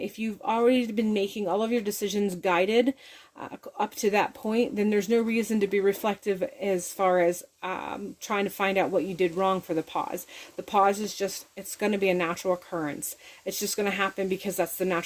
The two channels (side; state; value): both; identical; correlation 1.00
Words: you've already been making all of your decisions guided up to that point, then there's no reason to be reflective as far as trying to find out what you did wrong for the pause. The pause is just, it's going to be a natural occurrence. It's just going to happen because that's the